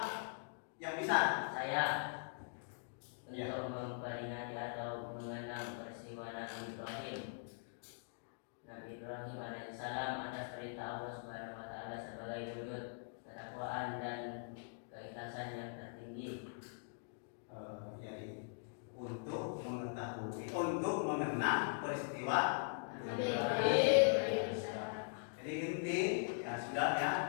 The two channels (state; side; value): silent; right; digital silence